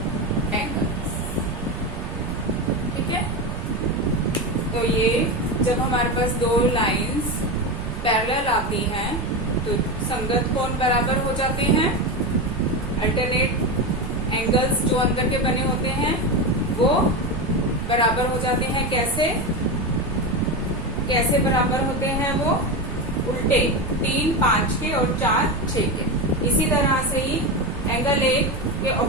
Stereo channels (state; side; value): noise; right; rumble, 7 dB below the sound